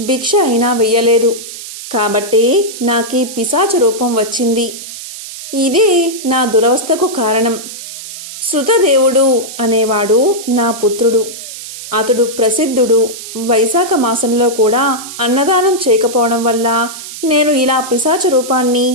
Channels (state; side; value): noise; right; hiss, 12 dB below the sound